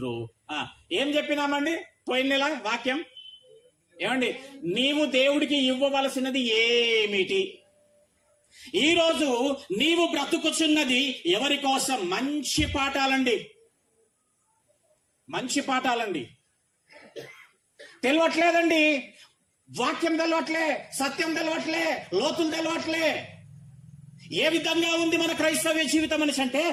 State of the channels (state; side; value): identical; both; correlation 1.00